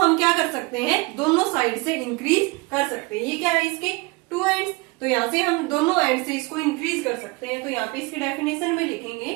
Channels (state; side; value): quieter; left; 25.8 dB